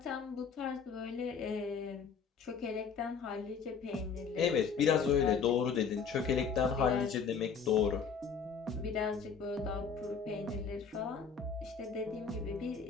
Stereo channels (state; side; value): quieter; right; 6.0 dB